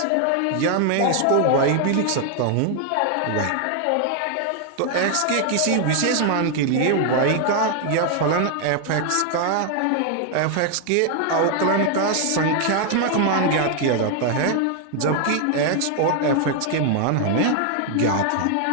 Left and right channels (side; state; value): both; different; correlation 0.00